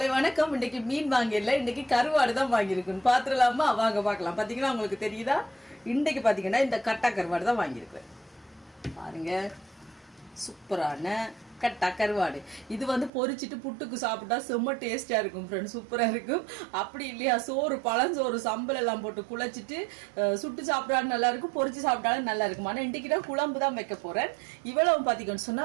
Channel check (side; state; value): left; drops out; at 13.1 s